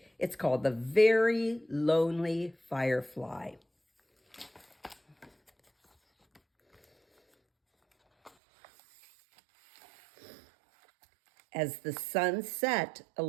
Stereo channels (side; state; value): left; drops out; at 8.3 s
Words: It's called The Very Lonely Firefly. As the sun set, a